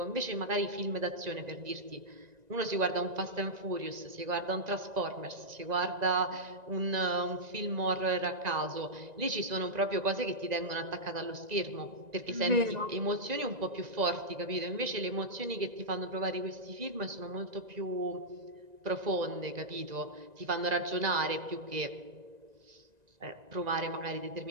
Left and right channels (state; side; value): late; left; 1.9 ms